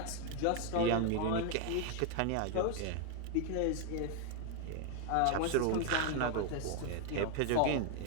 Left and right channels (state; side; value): different; both; correlation 0.00